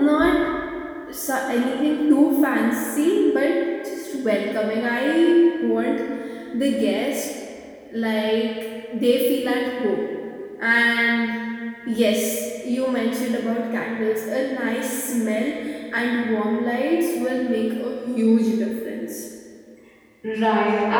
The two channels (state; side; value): identical; both; correlation 1.00